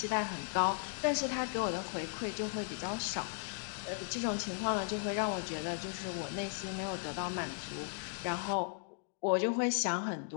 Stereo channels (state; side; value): silent; right; digital silence